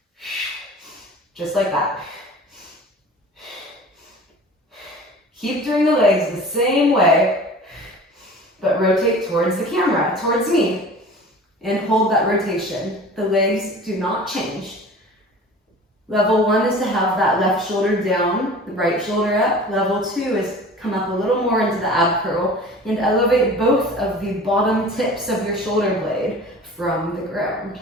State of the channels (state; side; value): normal; both; correlation 0.41